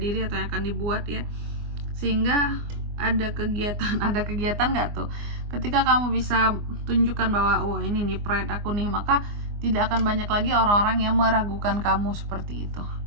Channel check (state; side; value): late; left; 24 ms